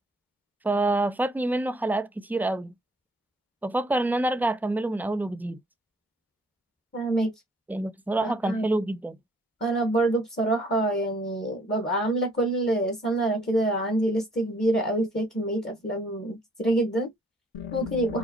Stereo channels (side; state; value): both; normal; correlation 0.63